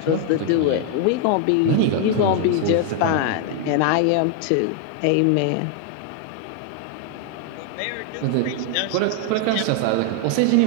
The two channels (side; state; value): both; different; correlation 0.00